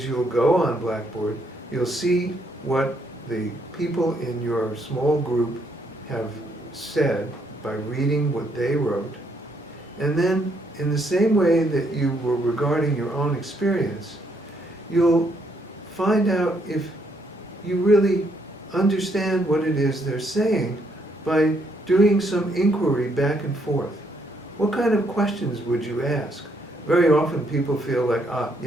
you'll go on Blackboard, you'll see what the people in your small group have said by reading what they wrote, and then in the same way that you were regarding your own experience, you'll find out if you really understand what it is they're saying by doing some inquiry back and forth. What kind of questions would you ask? Very often people feel like,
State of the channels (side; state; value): both; normal; correlation 0.72